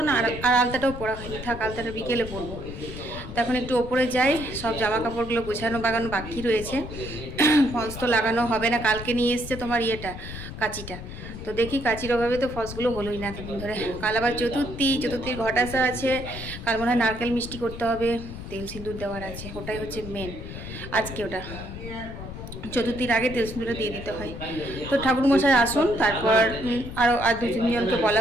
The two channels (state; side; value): noise; left; rumble, 10 dB below the sound